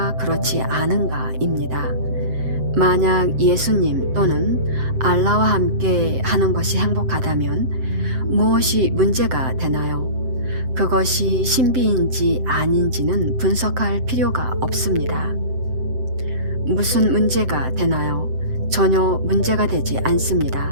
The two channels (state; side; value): late; left; 7.7 ms